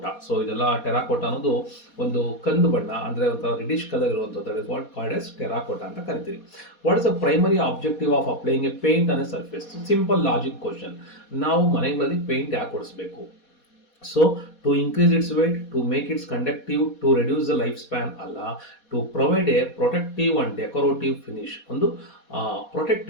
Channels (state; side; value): late; right; 4.2 ms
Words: So ಇದೆಲ್ಲ ಟೆರಾಕೋಟಾ ಅನ್ನೋದು ಒಂದು ಕಂದು ಬಣ್ಣ ಅಂದ್ರೆ ಒಂಥರ ರೆಡಿಶ್ ಕಲರ್ ಇರುವಂಥದ್ದು. That is what called as terracotta ಅಂತ ಕರಿತೀವಿ. What is the primary objective of applying a paint on a surface? Simple logic question. ನಾವು ಮನೆಗಳಲ್ಲಿ ಪೇಂಟ್ ಯಾಕೆ ಹೊಡಿಸ್ಬೇಕು? So to increase its weight, to make its conductive, to reduce the life span ಅಲ್ಲ, to provide a protective and decorative finish. ಒಂದು